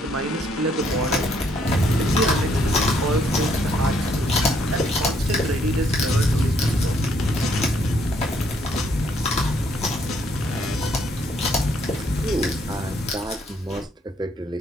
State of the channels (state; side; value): normal; both; correlation 0.69